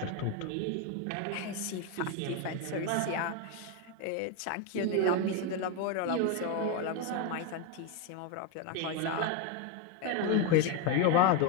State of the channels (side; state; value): both; different; correlation 0.02